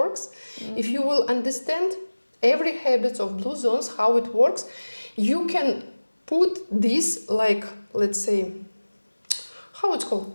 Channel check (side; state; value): both; inverted; correlation -1.00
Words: If you will understand every habit of Bluezones, how it works, you can put this, like, let's say, how it's